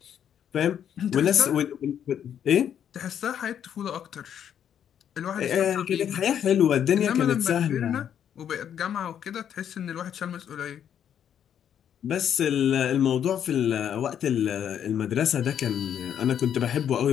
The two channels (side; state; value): right; quieter; 9.2 dB